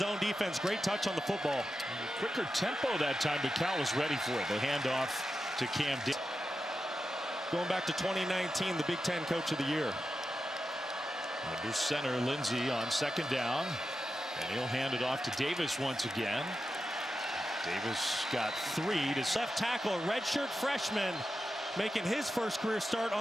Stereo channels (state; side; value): normal; both; correlation 0.90